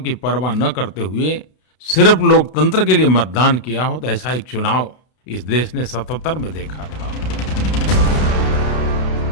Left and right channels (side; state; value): right; late; 32 ms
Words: परवाह न करते हुए सिर्फ लोकतंत्र के लिए मतदान किया हो, तो ऐसा एक चुनाव इस देश ने 77 में देखा था।